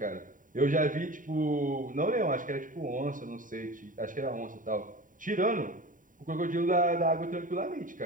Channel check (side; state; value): left; late; 0.39 ms